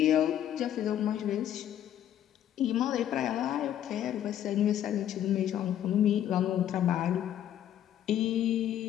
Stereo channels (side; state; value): right; quieter; 10.9 dB